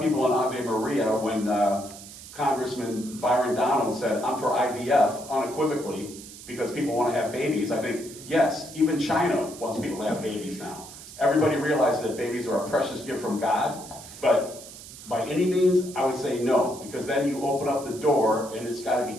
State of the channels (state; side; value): noise; right; hiss, 15 dB below the sound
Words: people in Ave Maria, when Congressman Byron Donald said, I'm for IVF, unequivocally, because people want to have babies. I think, yes, even China wants people to have babies now. Everybody realizes that babies are a precious gift from God, but by any means, I would say no, because then you open up the door, and it's got to